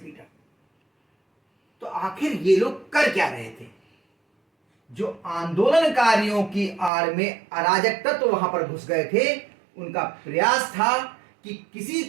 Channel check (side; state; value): left; drops out; at 6.9 s